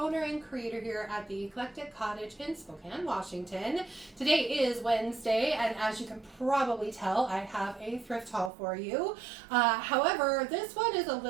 and creator here at the Eclectic Cottage in Spokane, Washington. Today is Wednesday, and as you can probably tell, I have a thrift haul for you. However, this one is a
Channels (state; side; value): drops out; left; at 8.5 s